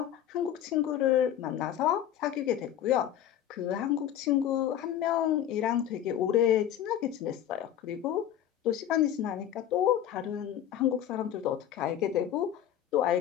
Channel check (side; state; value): right; quieter; 10.7 dB